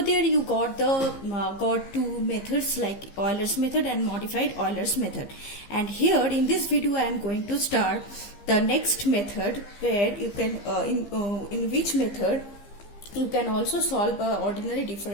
you got two methods like Euler's method and modified Euler's method. And here in this video I am going to start the next method where you can in which method you can also solve an ordinary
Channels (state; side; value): late; right; 15 ms